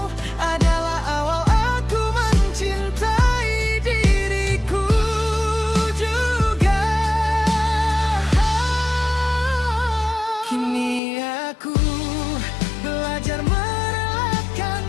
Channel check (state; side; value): drops out; right; at 11.0 s